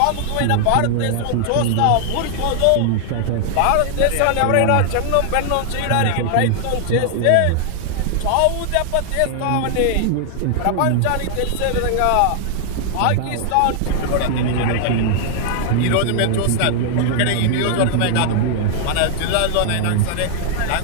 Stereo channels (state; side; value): different; both; correlation -0.01